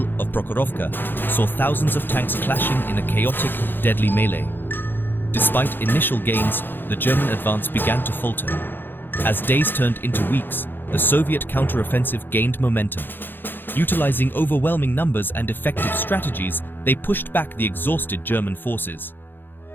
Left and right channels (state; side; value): late; right; 0.097 ms